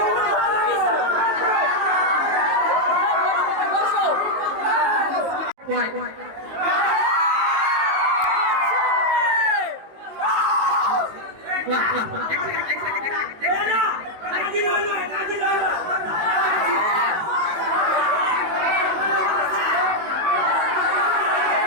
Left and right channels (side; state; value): left; late; 19 ms